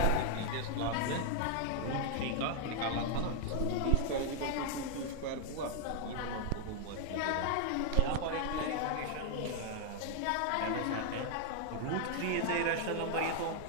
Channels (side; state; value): both; different; correlation 0.00